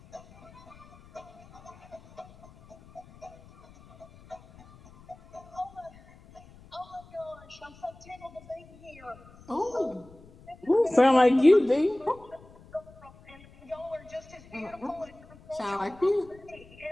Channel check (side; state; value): left; noise; rumble, 23 dB below the sound